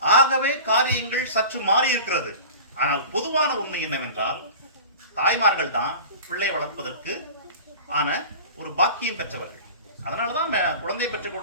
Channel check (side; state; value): both; inverted; correlation -0.38